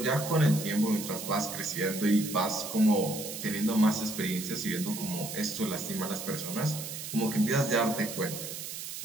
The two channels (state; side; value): noise; right; hiss, 8 dB below the sound